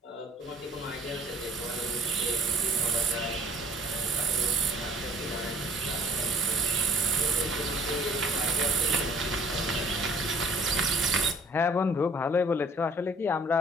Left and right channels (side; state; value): both; normal; correlation 0.53